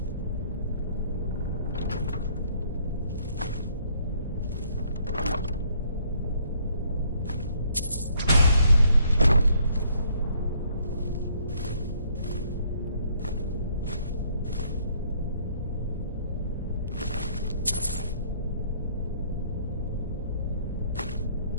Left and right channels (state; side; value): inverted; both; correlation -0.65